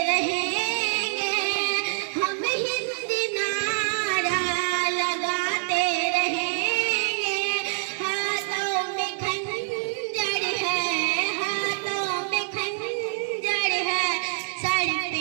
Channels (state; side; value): silent; left; 58 dB below the other